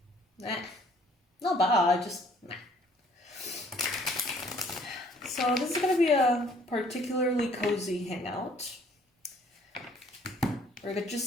not bad, just meh. So this is gonna be a particularly cozy hangout. We're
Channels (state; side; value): normal; both; correlation 0.59